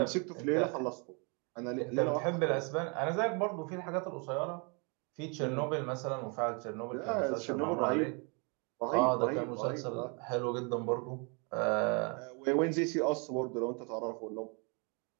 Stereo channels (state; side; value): quieter; left; 34.2 dB